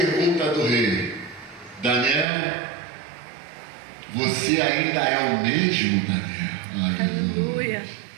do rei: Daniel, você ainda é o mesmo, Daniel? Aleluia.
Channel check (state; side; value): drops out; left; at 2.2 s